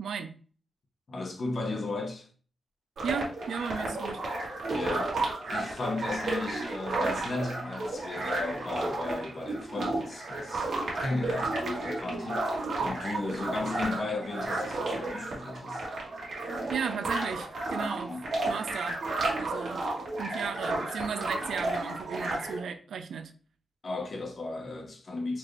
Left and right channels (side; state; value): both; normal; correlation 0.83